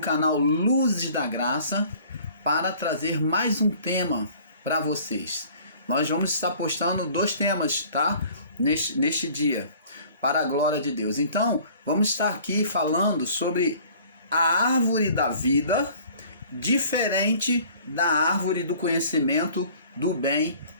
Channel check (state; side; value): inverted; both; correlation -0.51